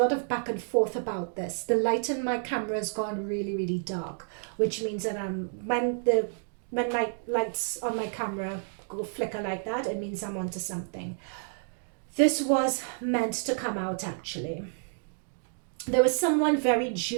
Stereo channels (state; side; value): silent; left; digital silence